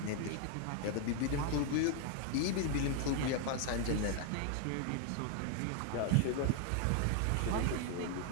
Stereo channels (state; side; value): different; both; correlation 0.00